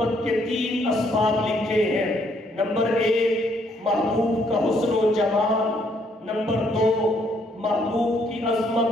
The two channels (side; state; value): both; normal; correlation 0.69